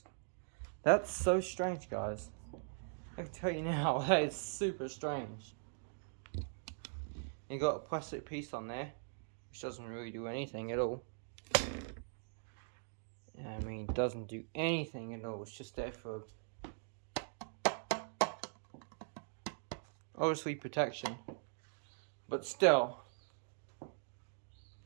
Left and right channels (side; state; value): left; silent; digital silence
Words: That's so strange, guys. I can tell you now, that is super strange. You got a plastic piece on there, which doesn't really do anything at all. I mean, it doesn't do anything at all. It's just there for obviously protection, but still.